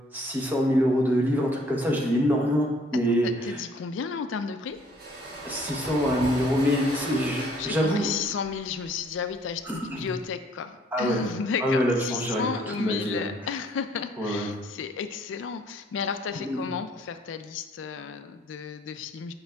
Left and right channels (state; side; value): normal; both; correlation 0.61